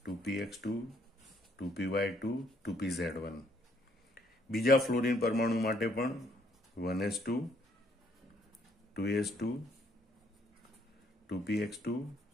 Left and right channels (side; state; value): both; normal; correlation 0.68